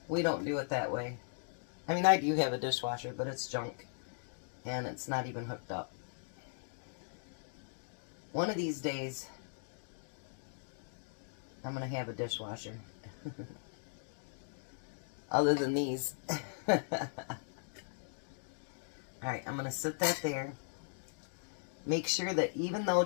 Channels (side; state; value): right; silent; digital silence